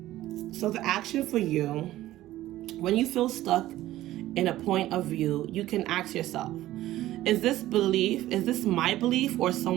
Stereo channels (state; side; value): quieter; left; 15.0 dB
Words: So the action for you, when you feel stuck in a point of view, you can ask yourself, is this my belief or